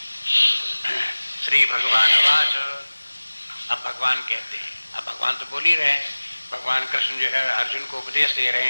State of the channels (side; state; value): both; inverted; correlation -1.00